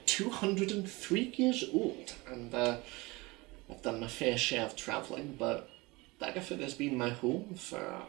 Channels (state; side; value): quieter; left; 23.6 dB